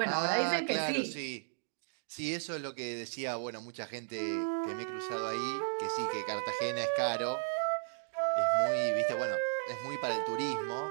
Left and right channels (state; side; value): silent; left; digital silence